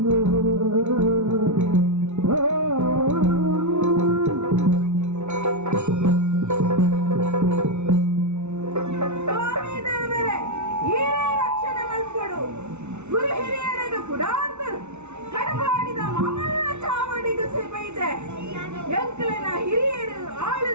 ಸ್ವಾಮಿ ದೇವರೇ ಈರ ರಕ್ಷಣೆ ಮಲ್ಪಡು ಗುರು ಹಿರಿಯರಿಗೆ ಕುಡಾರ್ದ ಕಡಪಾಡಿದ ಮಾಮಲ್ಲ ಚಾವಡಿಗೂ ಸಿಬೈದೆ ಎಂಕಲಿನ ಹಿರಿಯರು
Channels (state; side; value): late; left; 0.82 ms